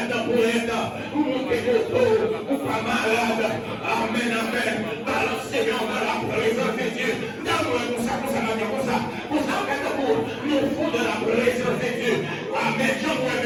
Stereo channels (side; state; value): both; identical; correlation 1.00